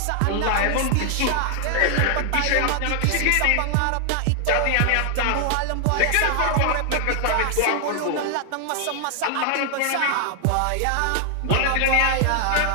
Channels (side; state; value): both; different; correlation 0.00